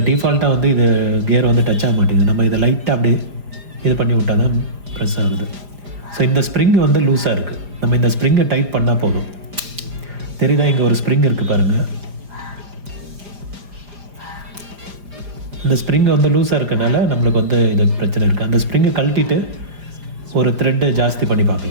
டிஃபால்ட்டாக வந்து இது கியர் வந்து டச் ஆக மாட்டேங்குது. நம்ம இதை லைட்டாக அப்படியே இது பண்ணி விட்டால் தான் ப்ரெஸ் ஆகுது. ஸோ இந்த ஸ்ப்ரிங் வந்து லூஸாக இருக்குது. நம்ம இந்த ஸ்ப்ரிங்கை டைட் பண்ணால் போதும். தெரியுதா, இங்கே ஒரு ஸ்ப்ரிங் இருக்குது பாருங்கள். இந்த ஸ்ப்ரிங் வந்து லூஸாக இருக்கனால நம்மளுக்கு வந்து இது பிரச்சனை இருக்குது. அந்த ஸ்ப்ரிங்கை கழட்டிட்டு ஒரு த்ரெட்டை ஜாஸ்தி பண்ணி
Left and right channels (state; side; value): late; left; 5.0 ms